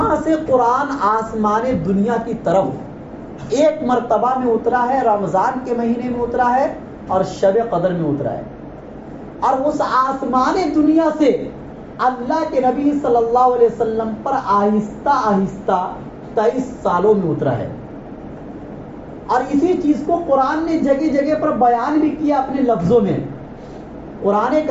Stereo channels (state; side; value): identical; both; correlation 1.00